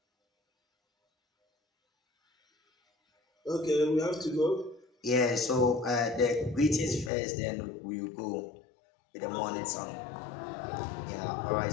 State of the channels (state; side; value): drops out; right; at 7.1 s